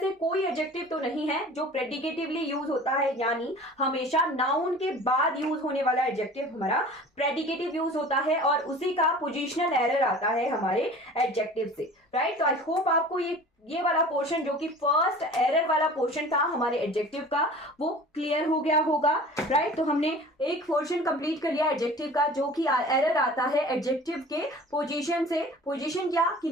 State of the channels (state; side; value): normal; both; correlation 0.42